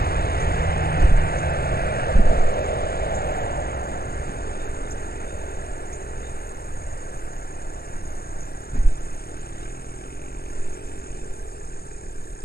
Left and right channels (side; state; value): right; late; 0.45 ms